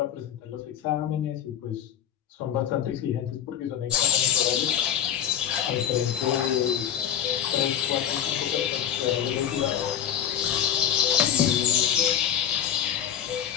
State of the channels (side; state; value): right; quieter; 9.6 dB